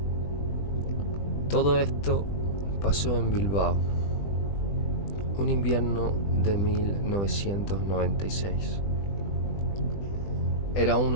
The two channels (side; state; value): right; late; 20 ms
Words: Todo esto pasó en Bilbao, un invierno de 1996. Era